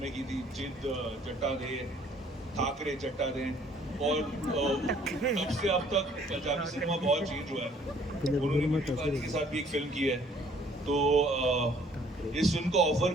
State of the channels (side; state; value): both; normal; correlation 0.59